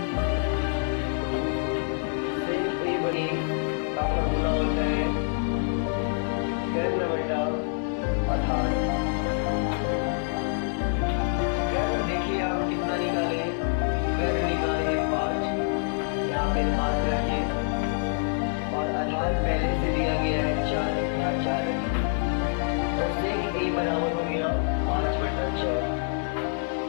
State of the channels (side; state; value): right; silent; 61 dB below the other